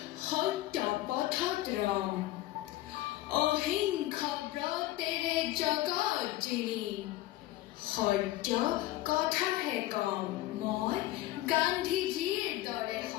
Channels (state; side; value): quieter; right; 16.0 dB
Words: সত্য পথত ৰম অহিংস ব্ৰতেৰে জগত জিলিম সত্য কথাহে কম মই গান্ধীজীৰ দৰে